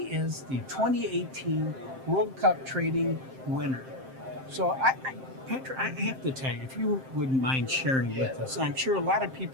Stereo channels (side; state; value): left; late; 7.6 ms